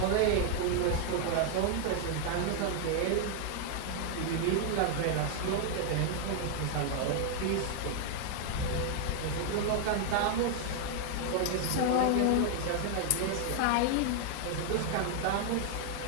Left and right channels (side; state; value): both; different; correlation 0.00